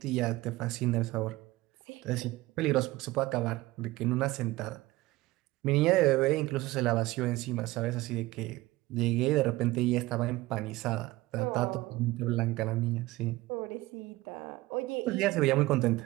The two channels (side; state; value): left; quieter; 19.1 dB